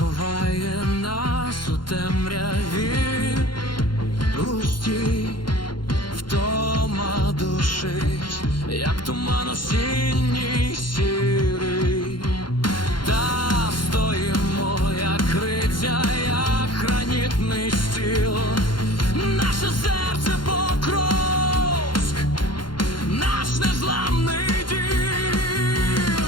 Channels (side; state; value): right; late; 0.72 ms